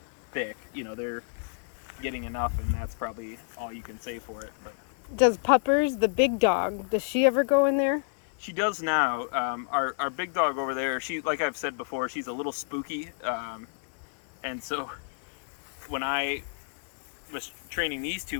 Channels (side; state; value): right; silent; digital silence